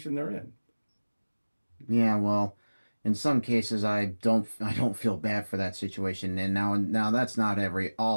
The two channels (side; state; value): both; inverted; correlation -1.00